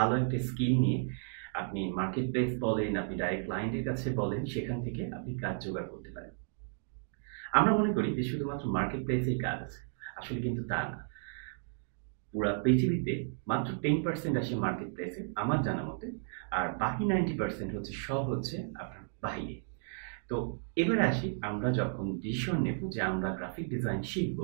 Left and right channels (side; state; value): left; silent; digital silence